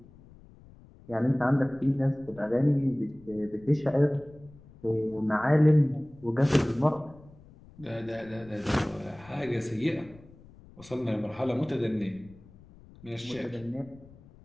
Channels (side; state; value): left; noise; rumble, 23 dB below the sound